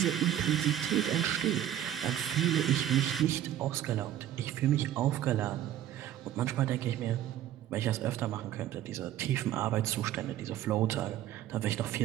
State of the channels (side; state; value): left; quieter; 11.7 dB